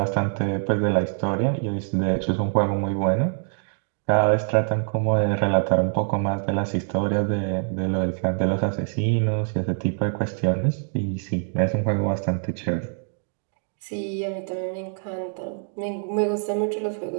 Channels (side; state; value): left; silent; digital silence